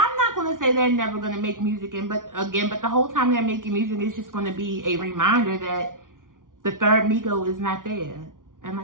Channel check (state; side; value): late; left; 0.89 ms